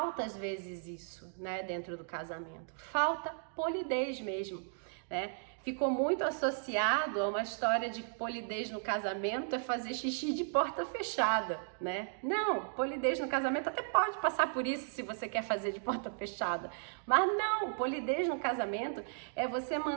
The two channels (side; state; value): left; silent; digital silence